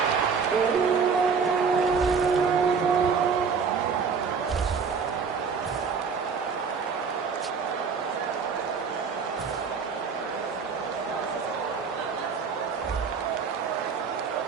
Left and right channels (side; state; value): left; quieter; 5.7 dB